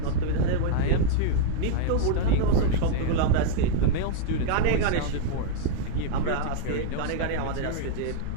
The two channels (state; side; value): different; both; correlation -0.01